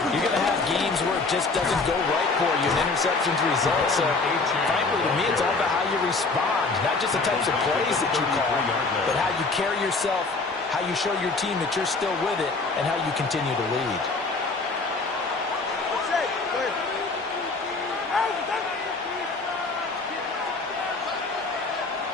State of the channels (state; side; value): quieter; right; 3.8 dB